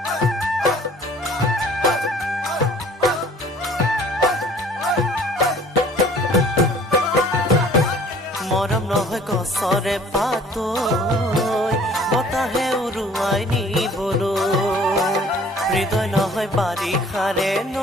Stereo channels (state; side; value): normal; both; correlation 0.52